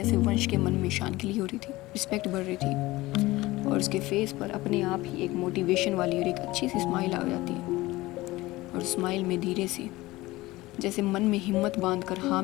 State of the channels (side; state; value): right; quieter; 19.2 dB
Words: वंश के मन में शान के लिए हो रही थी, रिस्पेक्ट बढ़ रही थी। और उसके फेस पर अपने आप ही एक मोटिवेशन वाली और एक अच्छी सी स्माइल आ जाती है। और स्माइल में धीरे से जैसे मन में हिम्मत बांध कर हाँ